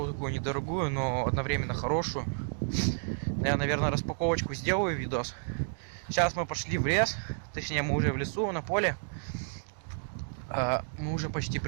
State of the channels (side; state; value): left; silent; digital silence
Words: такую недорогую, но одновременно хорошую. Я, наверное, распаковочку сделаю, видос. Сейчас мы пошли в лес, точнее мы уже в лесу, на поле. Мы уже почти